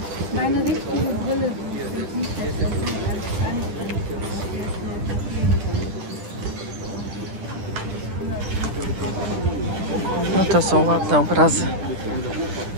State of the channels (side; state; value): left; late; 10 ms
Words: Meine richtige Brille. No to są ładne obrazy.